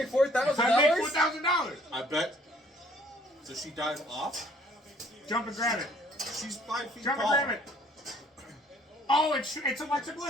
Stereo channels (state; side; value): normal; both; correlation 0.59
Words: $4,000? I make $4,000. I bet. Does she dive off? Jump and grab it. She's 5 feet Jump tall. and grab it. Oh, it's Alexa